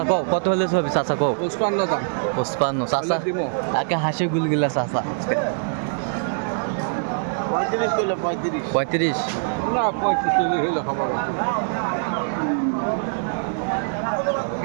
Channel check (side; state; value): left; silent; digital silence